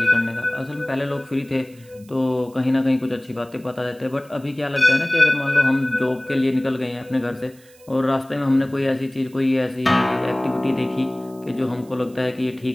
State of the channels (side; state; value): right; noise; hiss, 27 dB below the sound